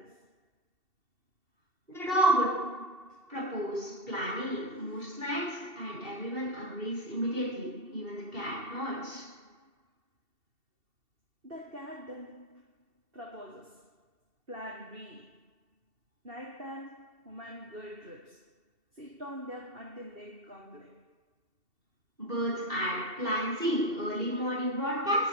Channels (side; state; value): left; late; 2.7 ms